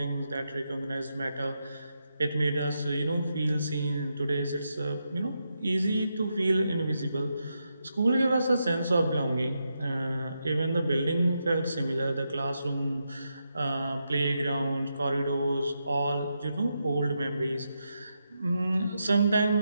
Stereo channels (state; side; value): inverted; both; correlation -0.84